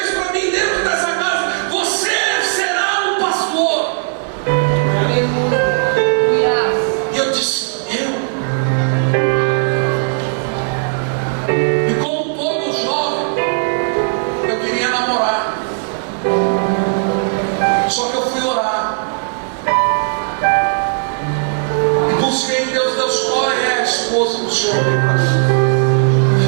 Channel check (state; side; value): silent; left; digital silence